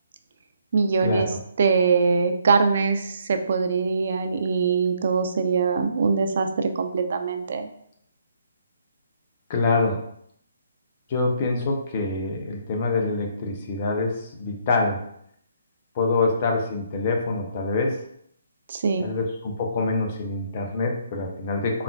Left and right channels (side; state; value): both; inverted; correlation -0.68